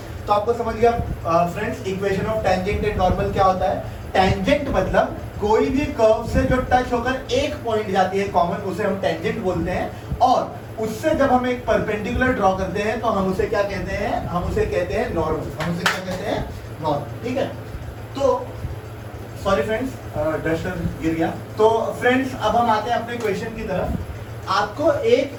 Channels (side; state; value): both; identical; correlation 1.00